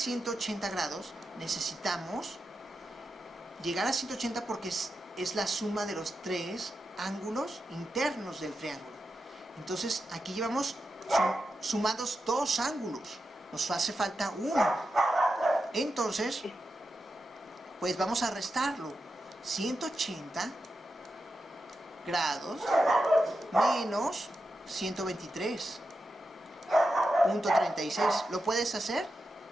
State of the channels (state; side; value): normal; both; correlation 0.89